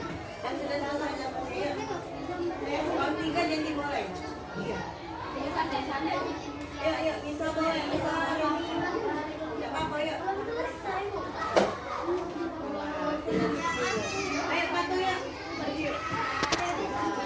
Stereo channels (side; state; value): both; identical; correlation 1.00